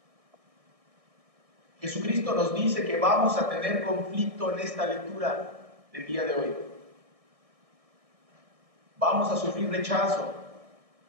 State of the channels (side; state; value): left; late; 1.6 ms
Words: Jesucristo nos dice que vamos a tener conflicto en esta lectura del día de hoy. Vamos a sufrir rechazo.